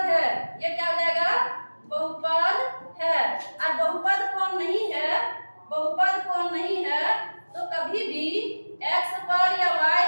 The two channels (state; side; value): inverted; both; correlation -1.00